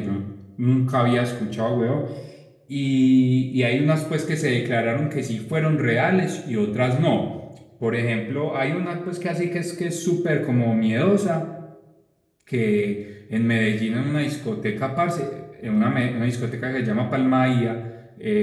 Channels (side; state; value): both; identical; correlation 1.00